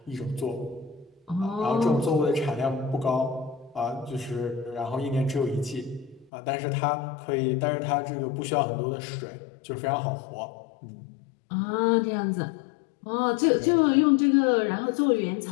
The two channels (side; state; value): right; drops out; at 6.3 s